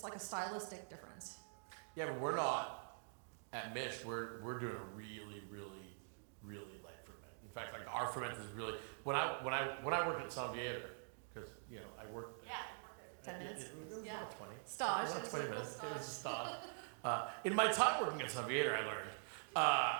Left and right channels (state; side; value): silent; left; digital silence